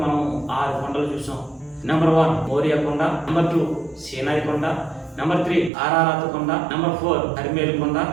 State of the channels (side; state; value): left; drops out; at 5.7 s